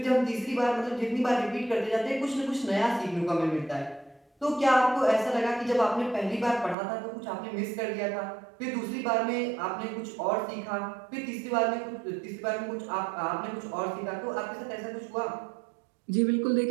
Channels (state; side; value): drops out; left; at 6.8 s